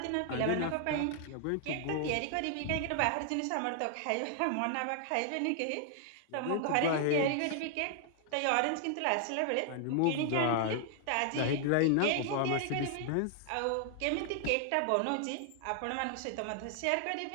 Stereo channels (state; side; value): different; both; correlation 0.00